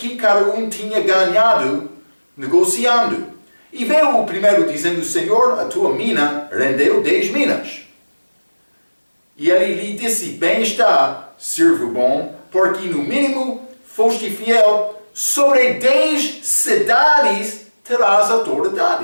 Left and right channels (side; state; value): both; inverted; correlation -1.00